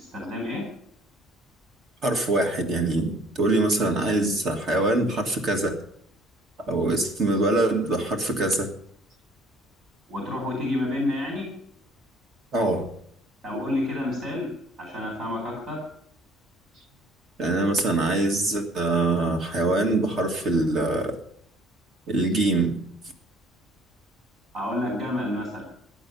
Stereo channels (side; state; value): both; normal; correlation 0.56